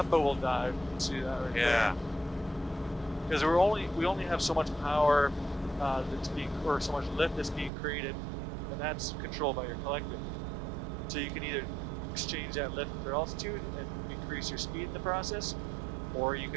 but we'll dive. See that right there? Because we only have so much power that's being, or so much lift that's being created, and that's controlled by your collective. So you can either exchange that lift for altitude and increase your speed in the process, or you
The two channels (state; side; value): drops out; left; at 7.7 s